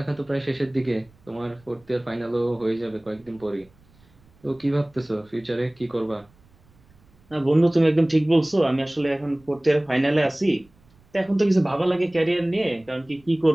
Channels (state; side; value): noise; right; rumble, 30 dB below the sound